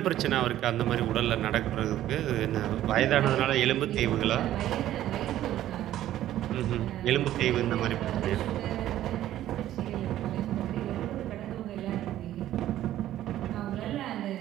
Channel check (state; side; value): quieter; left; 13.0 dB